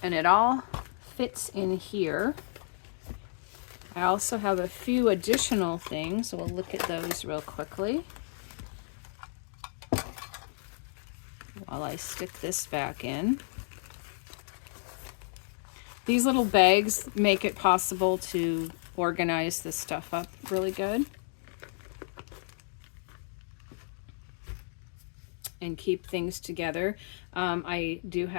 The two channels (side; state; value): right; silent; digital silence